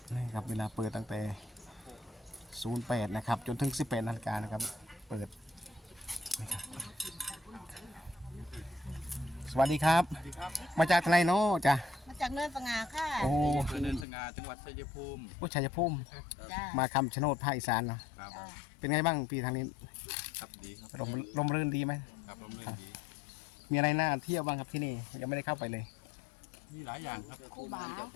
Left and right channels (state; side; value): drops out; right; at 14.1 s